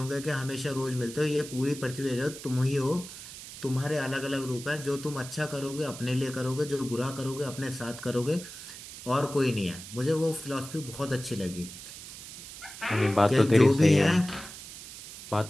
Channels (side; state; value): right; noise; hiss, 13 dB below the sound